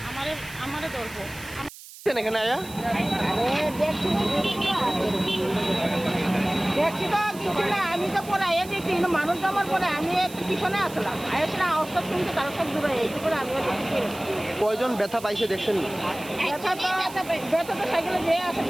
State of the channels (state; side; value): noise; right; hiss, 17 dB below the sound